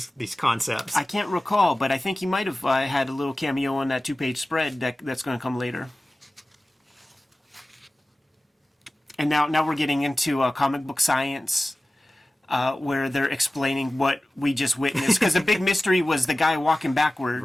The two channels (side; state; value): both; normal; correlation 0.96